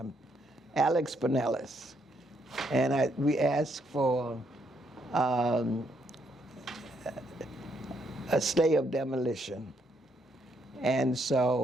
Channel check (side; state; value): both; normal; correlation 0.74